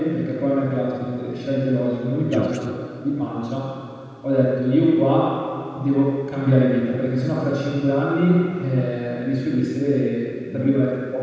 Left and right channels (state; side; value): identical; both; correlation 1.00